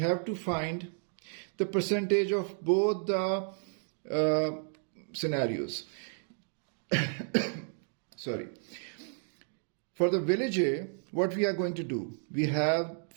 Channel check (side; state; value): left; silent; 56 dB below the other